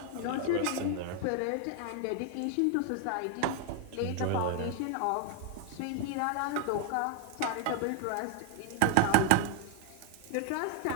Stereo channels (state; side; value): different; both; correlation 0.01